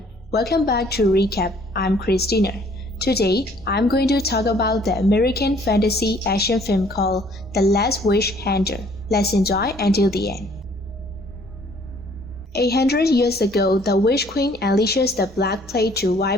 welcome back to Recap. I'm Christina. Today, I'm going to talk about the American fantasy action film called The Last Witch Hunter. Let's enjoy until the end. 800 years ago, the Witch Queen unleashes the Black Plague to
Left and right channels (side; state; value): both; normal; correlation 0.59